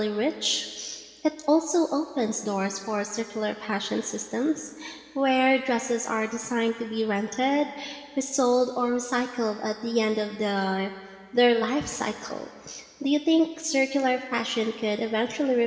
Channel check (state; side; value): identical; both; correlation 1.00